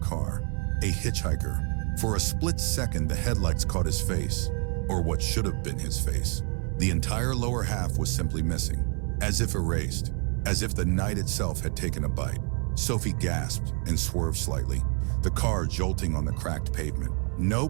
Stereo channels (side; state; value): left; quieter; 37.7 dB